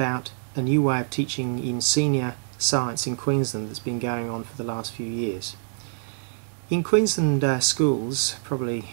a new way of teaching in senior science in Queensland that's been going on for the last few years. In Queensland schools, probably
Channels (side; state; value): left; silent; digital silence